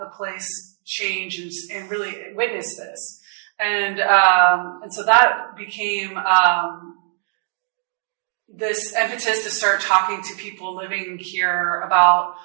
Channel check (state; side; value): silent; left; digital silence